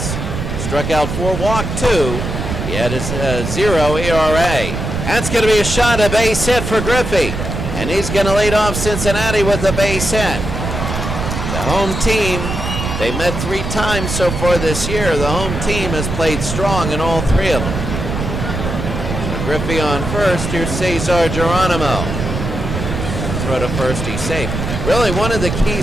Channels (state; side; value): noise; right; rumble, 4 dB below the sound